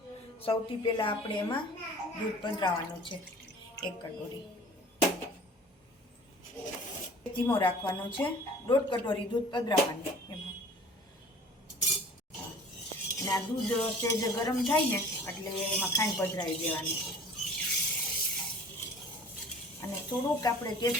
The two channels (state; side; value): normal; both; correlation 0.46